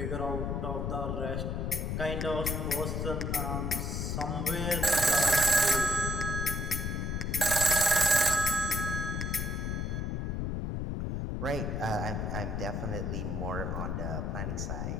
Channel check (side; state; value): left; noise; rumble, 1 dB below the sound